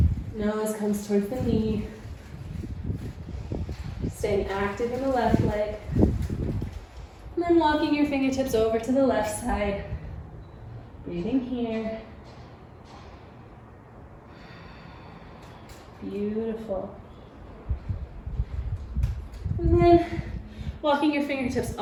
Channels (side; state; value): both; identical; correlation 1.00